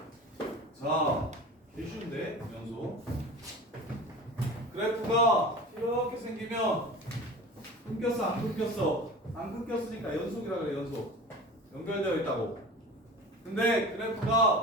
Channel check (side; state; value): both; normal; correlation 0.36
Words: 자, 개 쉬운데 연속. 그래프가 이렇게 생기면 끊겼어 안 끊겼어? 안 끊겼으니까 연속이라 그래. 연속 연결되어 있다고. 근데